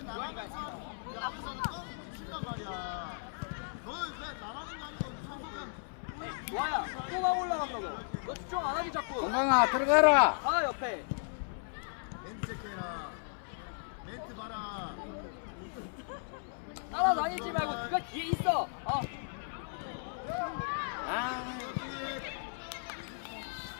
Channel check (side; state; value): right; silent; 54 dB below the other